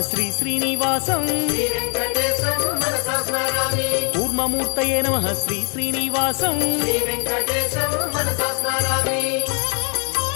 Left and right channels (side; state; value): right; quieter; 37.5 dB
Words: శ్రీ శ్రీనివాసం శ్రీ వెంకటేశం మనసా స్మరామి కూర్మమూర్తయే నమః శ్రీ శ్రీనివాసం శ్రీ వెంకటేశం మనసా స్మరామి